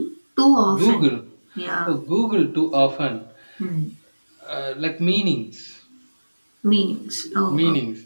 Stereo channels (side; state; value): both; inverted; correlation -1.00